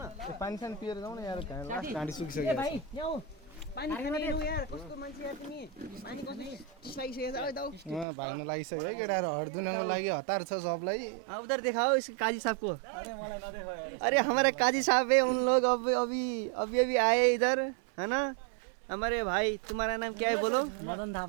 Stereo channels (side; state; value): left; drops out; at 8.1 s